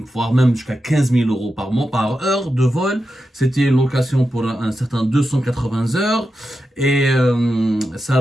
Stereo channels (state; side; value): normal; both; correlation 0.89